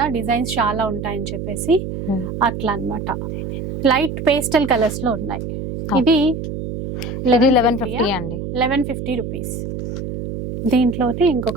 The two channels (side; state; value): right; noise; hum, 6 dB below the sound